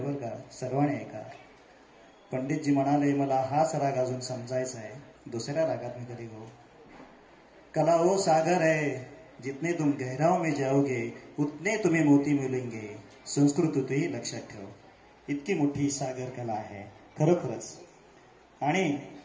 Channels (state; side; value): identical; both; correlation 1.00